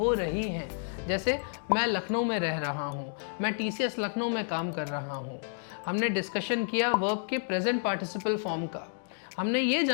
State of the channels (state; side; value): silent; right; digital silence